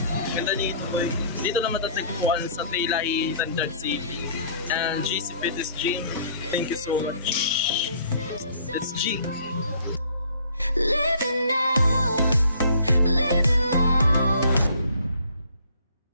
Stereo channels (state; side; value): inverted; both; correlation -0.56